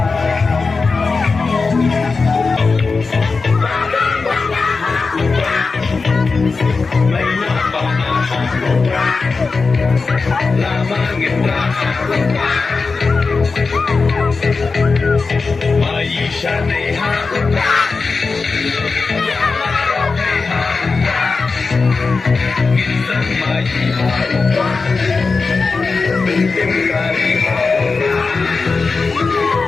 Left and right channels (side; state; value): right; quieter; 4.3 dB